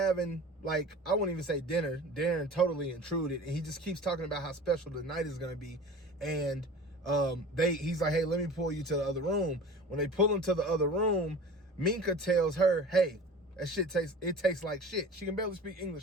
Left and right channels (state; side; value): normal; both; correlation 0.39